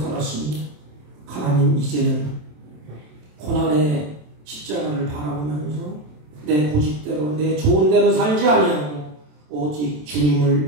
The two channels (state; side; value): late; left; 27 ms